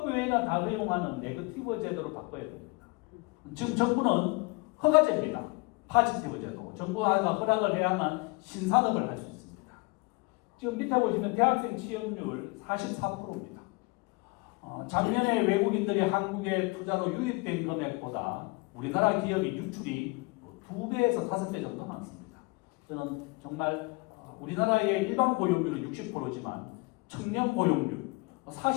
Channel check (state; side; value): quieter; right; 26.9 dB